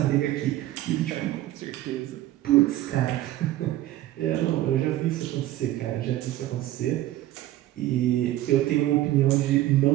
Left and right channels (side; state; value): left; quieter; 14.6 dB